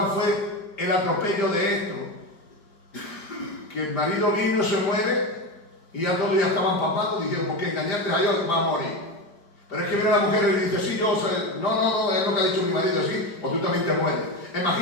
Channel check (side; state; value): right; late; 5.0 ms